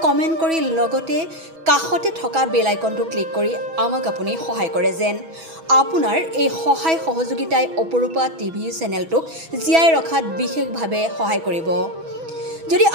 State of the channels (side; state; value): left; late; 6.1 ms